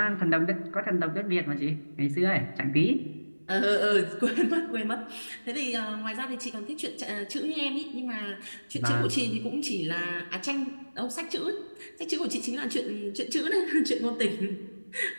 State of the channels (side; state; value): both; inverted; correlation -1.00